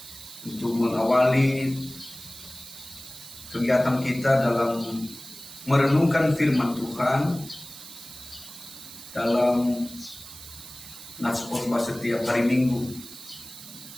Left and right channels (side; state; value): right; noise; hiss, 15 dB below the sound